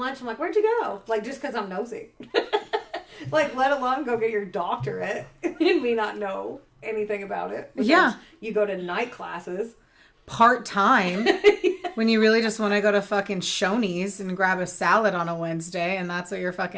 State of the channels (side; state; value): both; identical; correlation 1.00